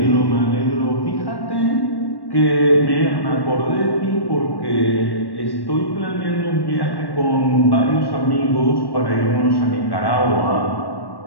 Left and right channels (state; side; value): late; right; 1.1 ms